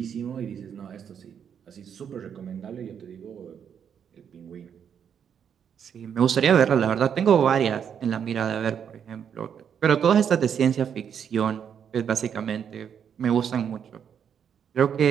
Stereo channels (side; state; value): left; quieter; 8.0 dB